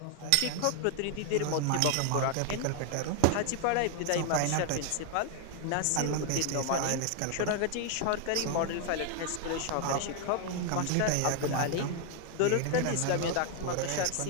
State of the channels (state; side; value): different; both; correlation 0.00